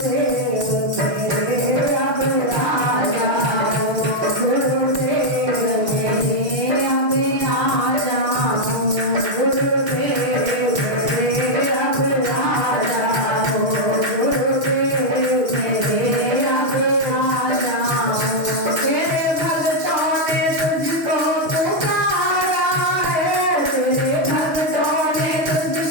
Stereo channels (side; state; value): left; late; 6.3 ms